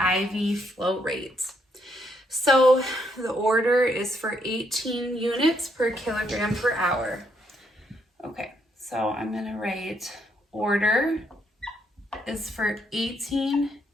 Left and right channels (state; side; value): normal; both; correlation 0.74